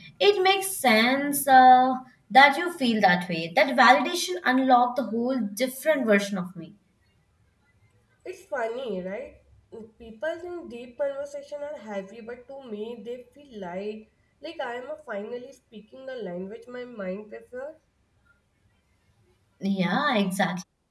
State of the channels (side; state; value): both; identical; correlation 1.00